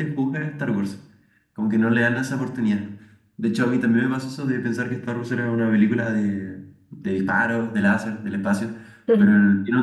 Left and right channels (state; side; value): identical; both; correlation 1.00